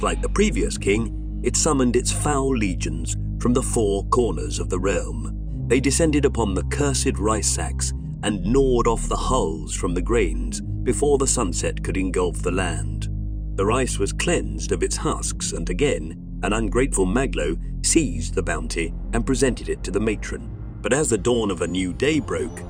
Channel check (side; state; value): both; identical; correlation 1.00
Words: like the previous king, it summoned its foul legions from the 4 corners of the realm. They descended upon the cursed rice sacks and gnawed off the hulls from the grains before the sunset could engulf the land. The rice was cleansed of its husks, and again, an ungrateful Maglo seized the bounty and presented it to the matron. But as the dawn of a new day broke,